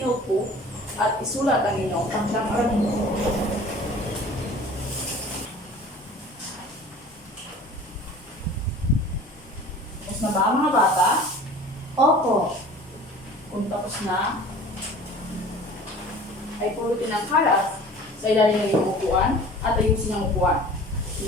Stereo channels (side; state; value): both; normal; correlation 0.44